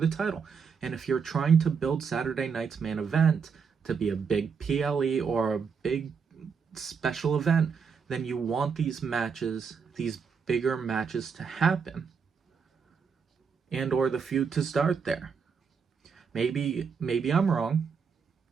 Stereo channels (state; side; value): quieter; left; 6.0 dB